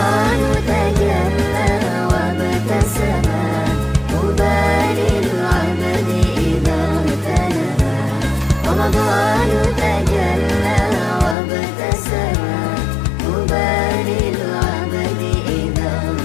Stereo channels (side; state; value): right; drops out; at 11.4 s